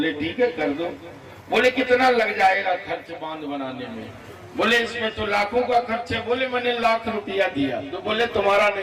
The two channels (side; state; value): both; identical; correlation 1.00